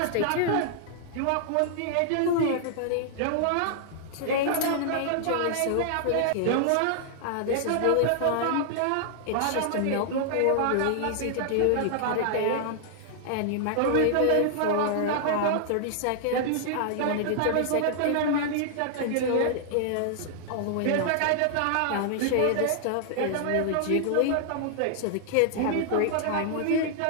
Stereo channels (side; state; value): both; different; correlation -0.01